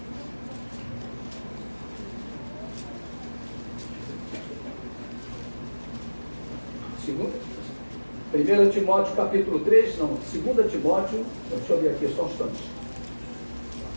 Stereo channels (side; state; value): both; inverted; correlation -1.00